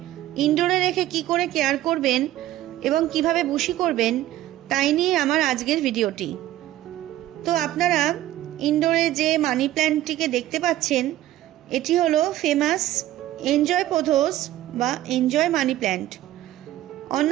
ইনডোরে রেখে কি করে কেয়ার করবেন এবং কিভাবে বুশি করবেন তাই নিয়ে আমার আজকের ভিডিওটি। তো আপনারা ইনডোরে যে মানি প্ল্যান্টটিকে দেখতে পাচ্ছেন এটি হলো ফেমাস এনজয় পোথোস বা এনজয় মানি প্ল্যান্ট।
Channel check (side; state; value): left; quieter; 14.3 dB